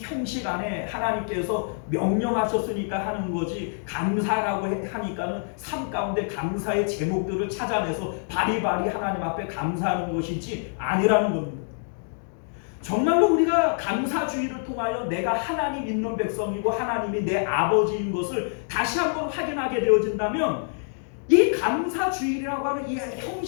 안에 하나님께서 명령하셨으니까 하는 거지 감사라고 하니까는 삶 가운데 감사의 제목들을 찾아내서 바리바리 하나님 앞에 감사하는 것이지 아니라는 겁니다. 정말로 우리가 감사주의를 통하여 내가 하나님 있는 백성이고 하나님이 내 아버지인 것을 다시 한번 확인하게 되어진다면 이 감사주일이라고 하는 이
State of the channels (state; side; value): silent; right; digital silence